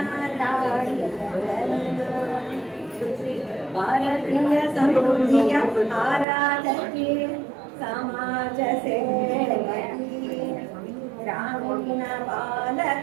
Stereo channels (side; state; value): left; drops out; at 6.2 s